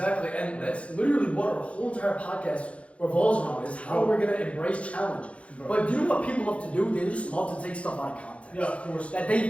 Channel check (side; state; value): right; late; 0.062 ms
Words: And that's literally what our whole entire podcast revolves around, is how we're going to embrace challenge. But do you know what people love to do? They just love to take stuff out of context. Yeah, of course.